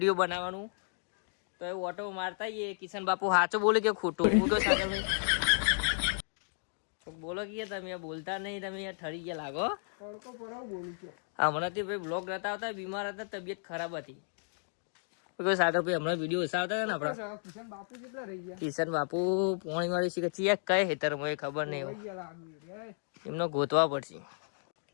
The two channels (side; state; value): right; silent; digital silence